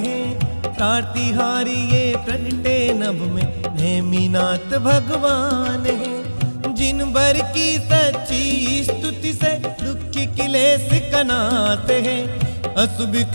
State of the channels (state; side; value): inverted; both; correlation -1.00